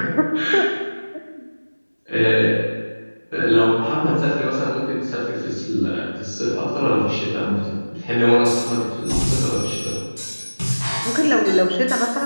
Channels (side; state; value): both; inverted; correlation -1.00